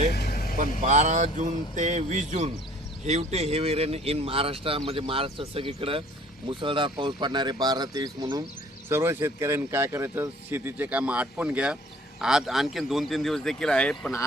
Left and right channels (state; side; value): normal; both; correlation 0.54